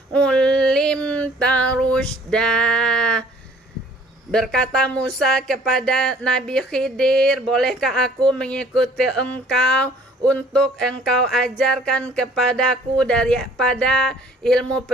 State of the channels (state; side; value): normal; both; correlation 0.56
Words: ulimta rusyda. Berkata Musa kepada Nabi Khidir, bolehkah aku mengikuti engkau untuk engkau ajarkan kepadaku daripada ilmu